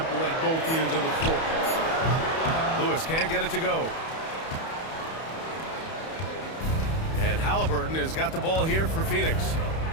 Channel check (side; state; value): right; late; 31 ms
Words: at both ends of the floor. Lewis can't get it to go. And Halliburton has got the ball here for Phoenix.